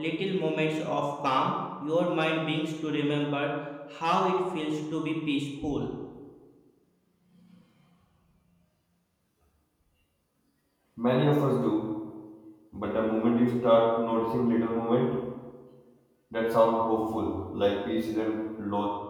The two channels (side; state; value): both; identical; correlation 1.00